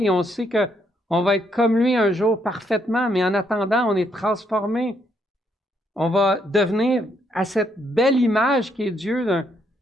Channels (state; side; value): normal; both; correlation 0.73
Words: Et on sait qu'on va être comme lui un jour parfaitement, mais en attendant, on est transformé. On va devenir à cette belle image qui est Dieu,